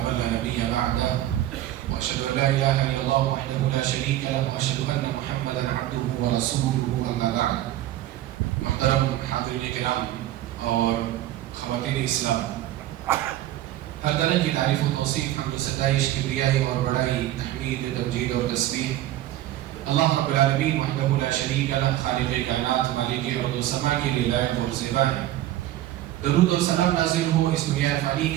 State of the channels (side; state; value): left; quieter; 13.9 dB